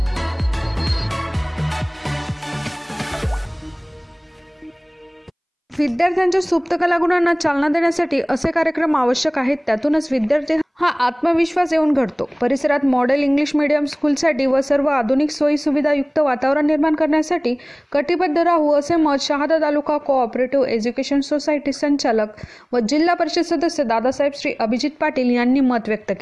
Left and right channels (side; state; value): both; identical; correlation 1.00